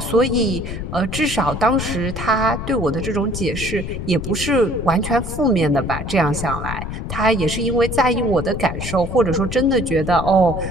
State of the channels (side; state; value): left; noise; rumble, 6 dB below the sound